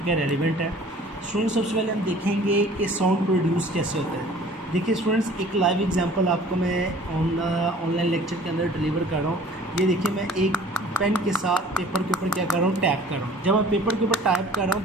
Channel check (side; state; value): both; normal; correlation 0.50